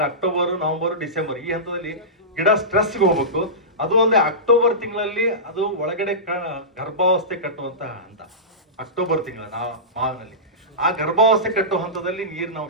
ಅಕ್ಟೋಬರ್, ನವೆಂಬರ್, ಡಿಸೆಂಬರ್ ಈ ಹಂತದಲ್ಲಿ ಗಿಡ ಸ್ಟ್ರೆಸ್ಗೆ ಹೋಗ್ಬೇಕು. ಅದು ಅಲ್ಲದೆ ಅಕ್ಟೋಬರ್ ತಿಂಗಳಲ್ಲಿ ಅದು ಒಳಗಡೆ ಗರ್ಭಾವಸ್ಥೆ ಕಟ್ಟುವಂತ ಹಂತ. ಅಕ್ಟೋಬರ್ ತಿಂಗಳ ಮಾವಿನಲ್ಲಿ ಆ ಗರ್ಭಾವಸ್ಥೆ ಕಟ್ಟುವ ಹಂತದಲ್ಲಿ ನೀರಿನ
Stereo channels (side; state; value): both; normal; correlation -0.18